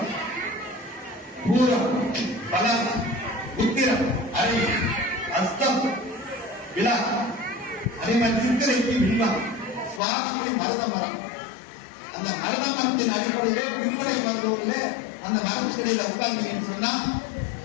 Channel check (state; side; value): drops out; right; at 10.0 s